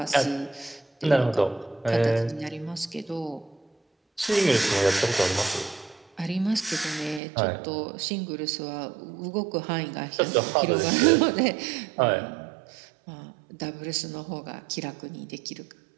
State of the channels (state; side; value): drops out; left; at 7.2 s